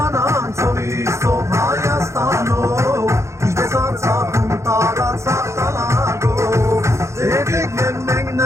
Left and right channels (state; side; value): late; left; 0.14 ms